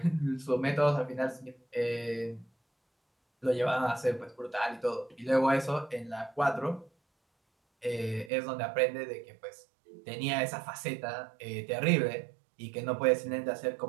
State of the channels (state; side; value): drops out; left; at 8.3 s